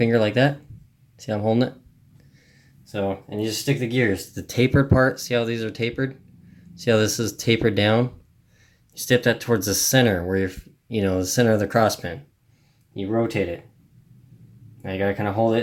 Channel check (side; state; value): both; identical; correlation 1.00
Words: like that. See how I'm holding it? So, and you just stick the gears. The tapered part, see how these are tapered? See how this is tapered down? You stick that towards the center where you're, the center of the cross pin. You rotate it. Now you gotta kind of hold